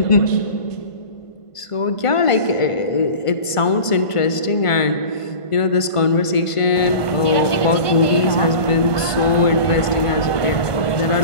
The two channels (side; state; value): right; late; 1.5 ms